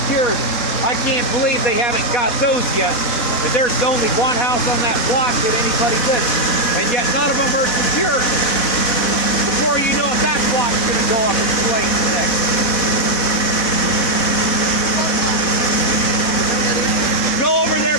I can't believe they haven't got those yet. And there's only one house on that block that anybody lives. And yet none of them are secured. Before you know it, that block's going to go up in flames next. Go over there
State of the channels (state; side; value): late; right; 4.1 ms